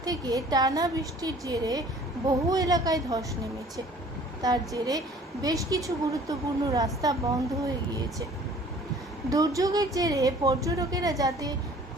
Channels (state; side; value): normal; both; correlation 0.51